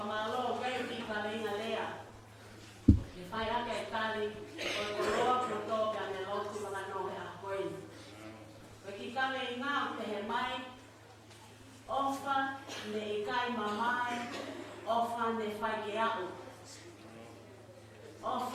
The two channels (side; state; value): both; identical; correlation 1.00